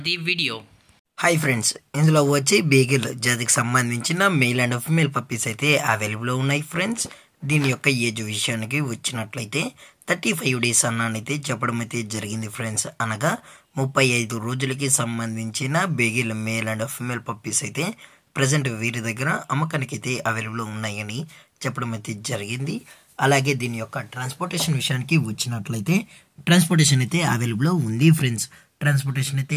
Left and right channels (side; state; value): both; identical; correlation 1.00